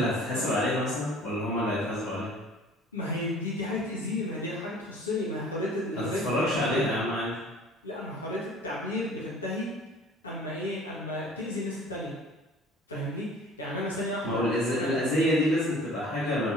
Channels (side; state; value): both; normal; correlation 0.48